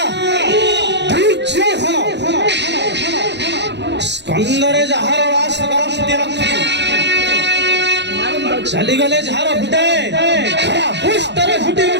ଦୁର୍ଯ୍ୟୋଧନ ସ୍କନ୍ଦରେ ଯାହାର ରାସ କରନ୍ତି ରଖି ଚାଲିଗଲେ ଯାହାର ଫୁଟେ ପୃଷ୍ଠରେ ଫୁଟି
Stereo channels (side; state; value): left; late; 0.51 ms